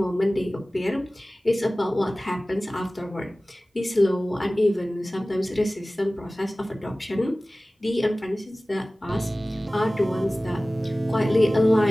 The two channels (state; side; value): normal; both; correlation 0.97